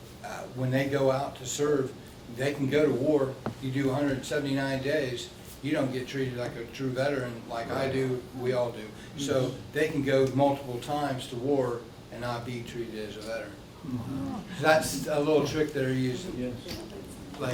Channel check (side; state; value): both; identical; correlation 1.00